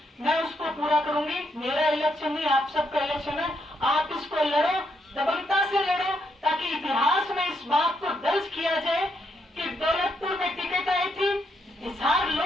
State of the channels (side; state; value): both; normal; correlation 0.77